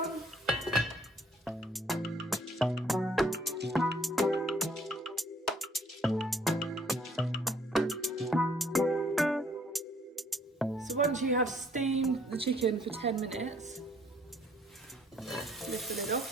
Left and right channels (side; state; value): both; normal; correlation 0.63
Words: Once you have steamed the chicken for 10 minutes, lift the lid